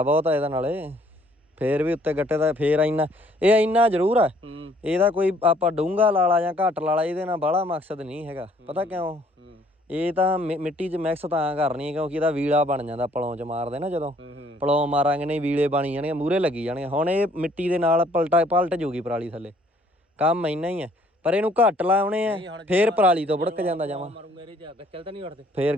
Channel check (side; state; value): both; normal; correlation 0.62